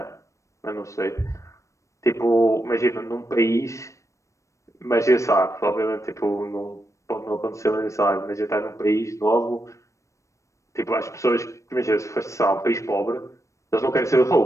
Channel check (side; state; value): right; late; 0.15 ms